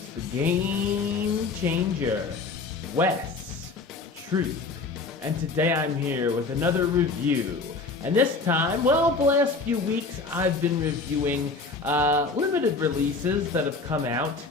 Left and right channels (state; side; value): quieter; right; 4.0 dB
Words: the Game Changer, Wes Troop, and today I'm here with another review. And this time, well, the last few weeks I've been reviewing limited releases that have come out